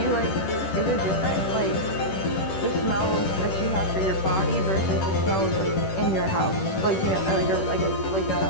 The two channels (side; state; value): right; late; 10 ms